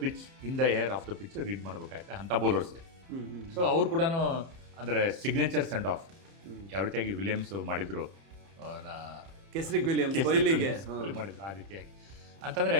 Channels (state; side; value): late; left; 30 ms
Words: pitch, in the air off the pitch read ಮಾಡಬೇಕಾಗುತ್ತೆ ಅಂಥ ಬೌಲರ್ಸ್ಗೆ. ಸೊ ಅವ್ರು ಕೂಡ ಅಂದರೆ ಸಿಗ್ನೇಚರ್ ಸೆಂಡ್ ಆಫ್ ಯಾವ ರೀತಿಯಾಗಿ ವಿಲಿಯಮ್ಸ್ ಮಾಡಿದ್ರು, ಕೆಸ್ರಿಕ್ ವಿಲಿಯಮ್ಸ್ ಕೊಹ್ಲಿಗೆ ಮಾಡಿದ್ರು ಆ ರೀತಿಯಾಗಿ. ಅಂತಂದರೆ